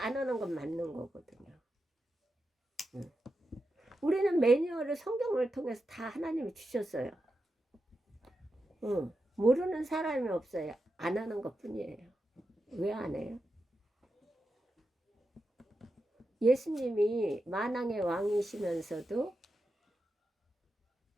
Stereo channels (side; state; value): both; normal; correlation 0.89